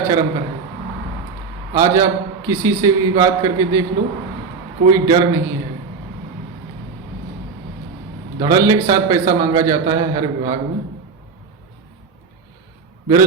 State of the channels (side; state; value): left; quieter; 4.9 dB